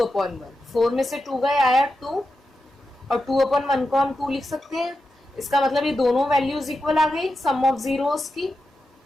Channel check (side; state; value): both; normal; correlation 0.89